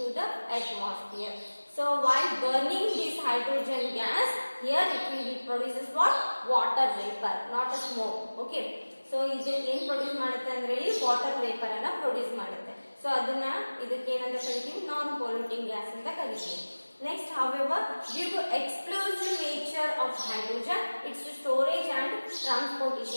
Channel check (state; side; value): inverted; both; correlation -1.00